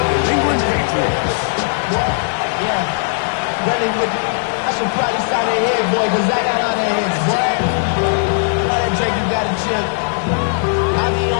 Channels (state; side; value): silent; right; digital silence